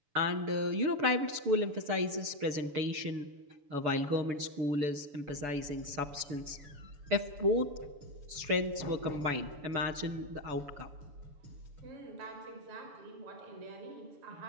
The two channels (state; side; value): late; left; 6.9 ms